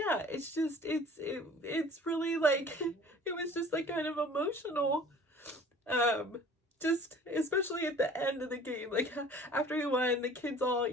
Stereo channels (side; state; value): both; normal; correlation 0.47